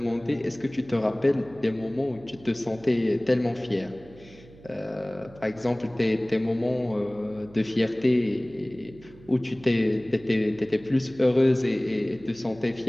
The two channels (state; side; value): noise; right; hum, 22 dB below the sound